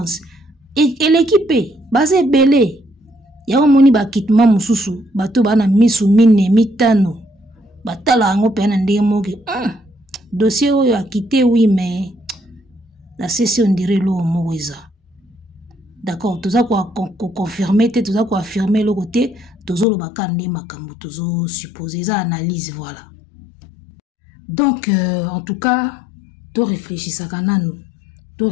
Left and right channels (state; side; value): drops out; right; at 19.9 s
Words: et l'équipe basé belé ya moni ba kitma mususu bato bana misu mine mitano batala ngo pena ndemoke dossier oyo a quitté oui mais la session dirait lo moza. D'accord, tout ça quoi confirmer tout ça quoi affirmer le côté tozo lo bakande makambo tozo supposer ça analyse voilà. Donc, en tout cas, tu réfléchis à kananu, tu